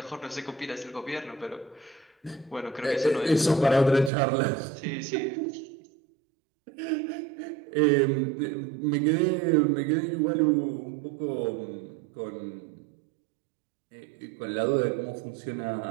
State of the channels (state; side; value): drops out; left; at 4.1 s